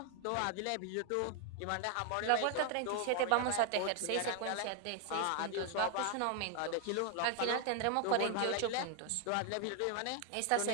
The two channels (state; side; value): different; both; correlation 0.00